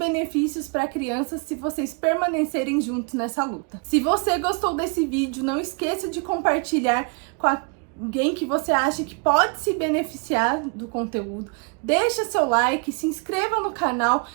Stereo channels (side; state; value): left; quieter; 35.3 dB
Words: para a criança se vocês permanecerem juntos nessa luta. Se você gostou desse vídeo, não esqueça de compartilhar com alguém que você acha que pode se beneficiar do conteúdo. Deixa seu like, se inscreva no canal,